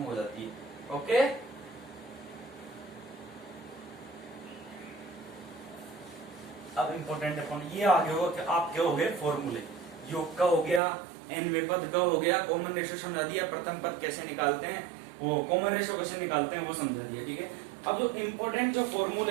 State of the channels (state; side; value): drops out; left; at 10.8 s